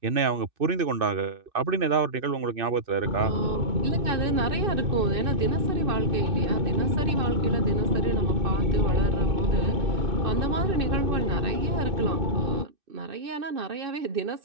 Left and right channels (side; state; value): left; late; 2.6 ms